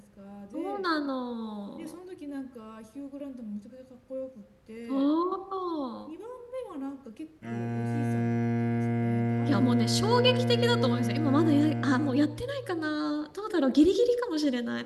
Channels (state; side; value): identical; both; correlation 1.00